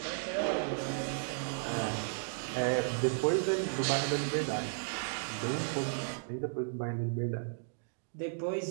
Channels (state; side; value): silent; left; digital silence